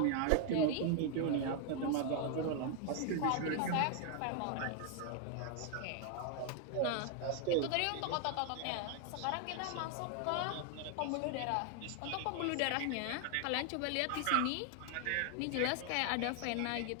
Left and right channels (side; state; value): both; different; correlation 0.00